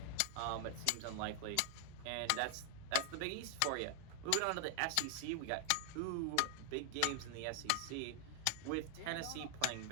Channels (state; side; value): different; both; correlation 0.00